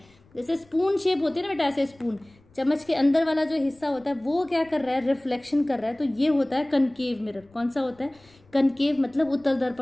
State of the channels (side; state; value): left; noise; rumble, 30 dB below the sound